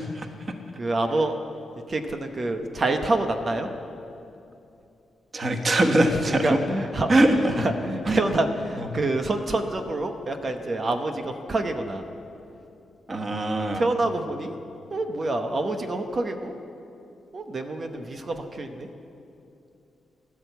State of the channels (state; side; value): normal; both; correlation 0.89